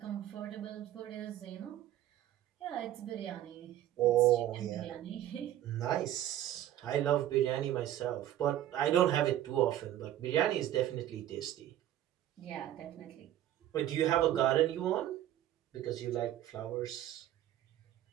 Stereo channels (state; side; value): quieter; left; 12.6 dB